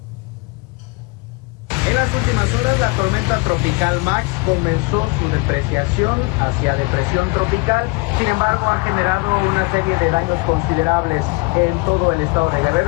En las últimas horas, la tormenta tropical Max comenzó su depreciación hacia depresión tropical. Sin embargo, ha generado una serie de daños considerables en todo el estado de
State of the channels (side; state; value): right; quieter; 26.7 dB